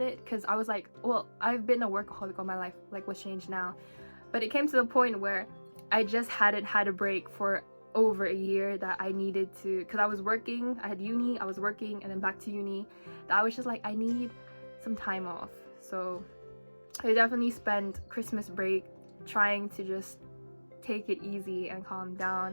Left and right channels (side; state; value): both; inverted; correlation -1.00